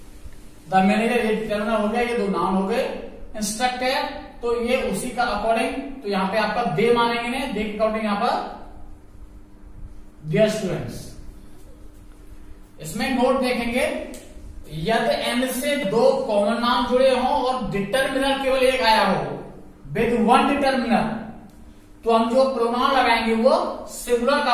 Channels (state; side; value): identical; both; correlation 1.00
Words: द मैनेजर ये डिटर्मिनर हो गया, ये दो नाउन हो गए। इंस्ट्रक्टर तो ये उसी का अकॉर्डिंग, तो यहां पे आपका दे मानेंगे ने, दे के अकॉर्डिंग यहां पर डियर स्टूडेंट्स। इसमें नोट देखेंगे, यदि एंड से दो कॉमन नाउन जुड़े हों और डिटर्मिनर केवल एक आया हो, विद वन डिटर्मिनर, तो हम जो प्रोनाउन लगाएंगे वो सिंगुलर का